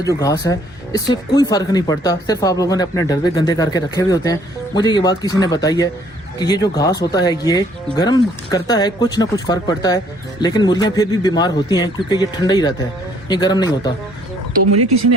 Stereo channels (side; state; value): both; normal; correlation 0.62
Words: घास है इससे कोई फ़र्क नहीं पड़ता, सिर्फ आप लोगों ने अपने डब्बे गंदे करके रखे हुए होते हैं। मुझे ये बात किसी ने बताई है कि ये जो घास होता है ये गर्म करता है, कुछ ना कुछ फ़र्क पड़ता है, लेकिन मुर्गियाँ फिर भी बीमार होती हैं क्योंकि ये ठंडा ही रहता है, ये गर्म नहीं होता। तो मुझे किसी ने